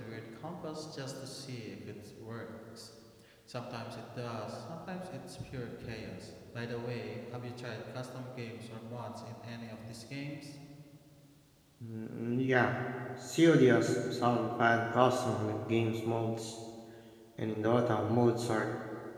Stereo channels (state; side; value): identical; both; correlation 1.00